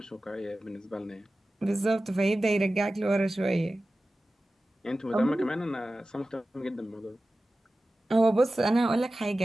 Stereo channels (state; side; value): normal; both; correlation 0.95